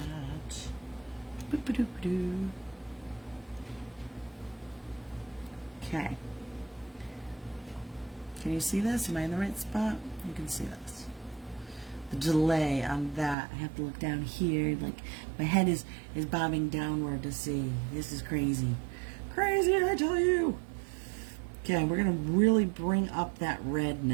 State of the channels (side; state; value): left; drops out; at 13.4 s